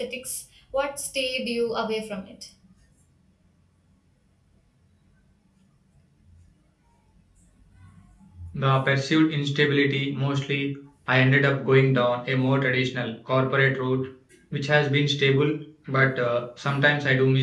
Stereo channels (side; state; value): both; identical; correlation 1.00